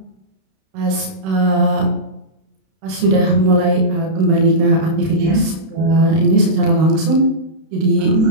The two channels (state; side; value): late; left; 32 ms